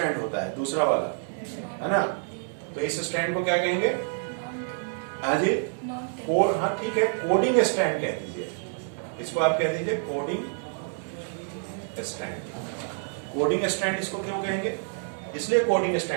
होता है दूसरा वाला, है ना, तो इस स्ट्रैंड को क्या कहेंगे, हाँ जी, कोड, हाँ ठीक है, कोडिंग स्ट्रैंड कह दीजिए, इसको आप कह दीजिए कोडिंग स्ट्रैंड। कोडिंग स्ट्रैंड इसको क्यों कहेंगे, इसलिए कोडिंग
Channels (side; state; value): left; silent; 60 dB below the other